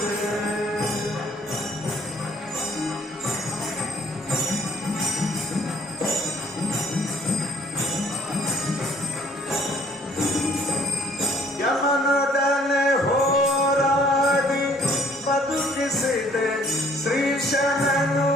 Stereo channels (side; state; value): both; normal; correlation 0.60